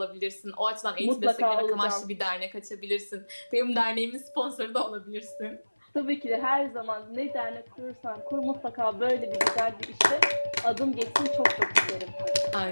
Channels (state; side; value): inverted; both; correlation -1.00